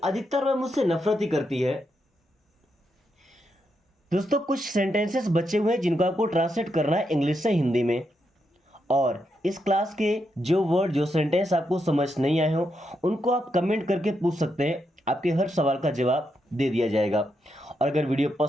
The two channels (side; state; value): both; normal; correlation 0.82